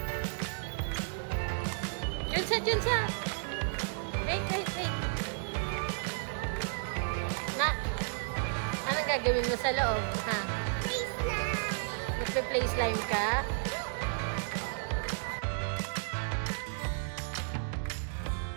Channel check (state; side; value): silent; left; digital silence